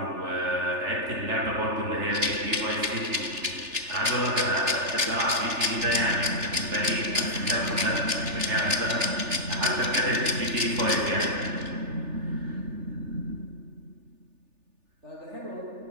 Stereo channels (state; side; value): late; left; 3.4 ms